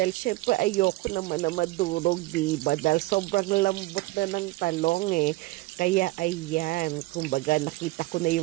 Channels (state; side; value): quieter; left; 20.3 dB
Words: syempre ayoko naman na madurog, diba? Dahil sobrang lambot na ng talong eh. Kaya ayan, kumbaga nakita ko na